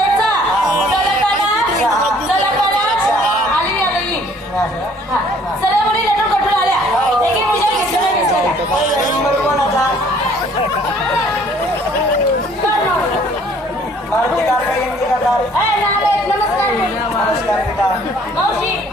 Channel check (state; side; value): normal; both; correlation 0.58